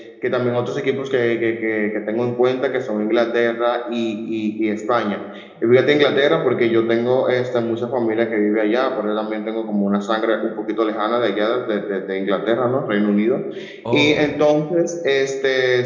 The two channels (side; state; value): both; identical; correlation 1.00